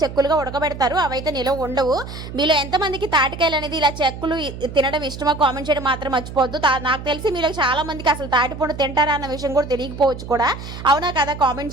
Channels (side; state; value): right; noise; hum, 11 dB below the sound